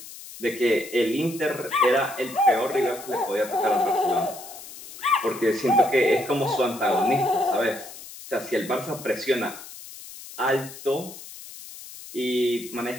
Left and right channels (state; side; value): noise; left; hiss, 15 dB below the sound